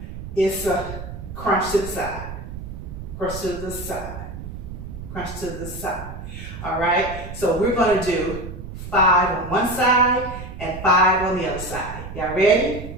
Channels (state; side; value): noise; right; rumble, 10 dB below the sound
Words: it's a crunch to the side, crunch to the side, crunch to the side. All right? So we're going to do 5 on one side and 5 on the other side. Y'all ready?